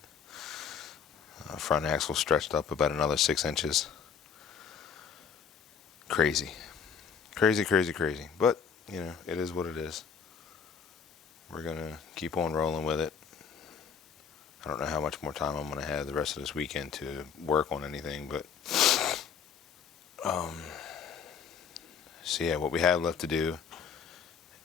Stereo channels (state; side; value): quieter; right; 6.8 dB